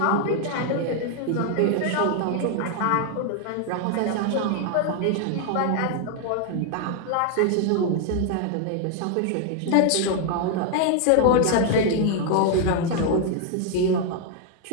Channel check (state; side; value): different; both; correlation 0.00